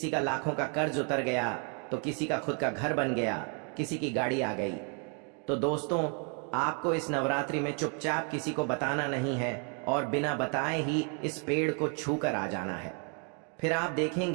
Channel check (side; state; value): left; quieter; 39.1 dB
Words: का लाखों का कर्ज उतर गया तो किसी का खुद का घर बन गया, किसी की गाड़ी आ गई। तो दोस्तों, आपको इस नवरात्रि में चुपचाप किसी को बताना नहीं है और बिना बताए ही इस पेड़ को छूकर आ जाना है। फिर आप